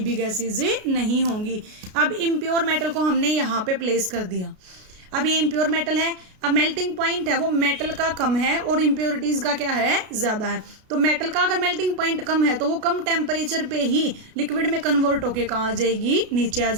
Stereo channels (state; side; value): late; left; 33 ms